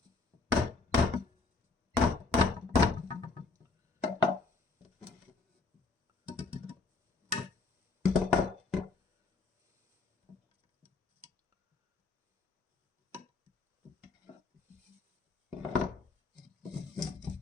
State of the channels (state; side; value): quieter; right; 4.0 dB